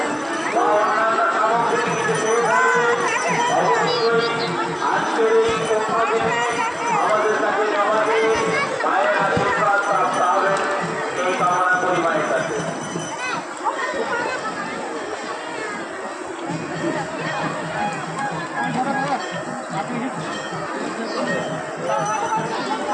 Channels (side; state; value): both; identical; correlation 1.00